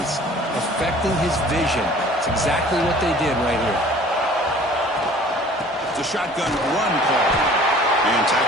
affecting his vision. It's exactly what they did right here. It's a shotgun run call. And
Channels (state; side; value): normal; both; correlation 0.49